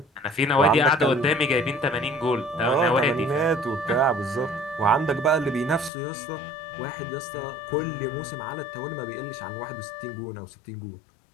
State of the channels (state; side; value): drops out; right; at 5.9 s